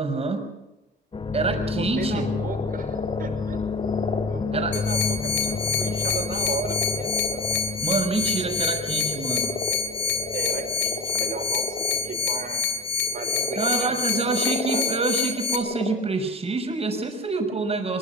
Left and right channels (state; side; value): normal; both; correlation 0.32